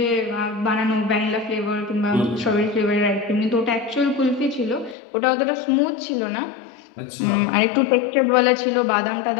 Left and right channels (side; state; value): right; drops out; at 5.0 s